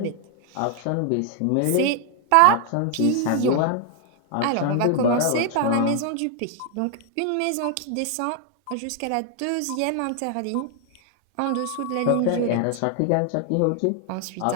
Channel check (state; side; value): different; both; correlation 0.00